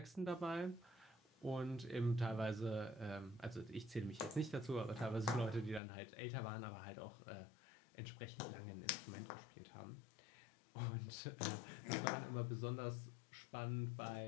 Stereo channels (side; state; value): right; drops out; at 5.8 s